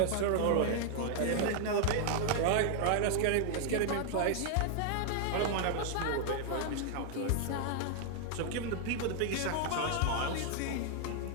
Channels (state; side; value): different; both; correlation 0.00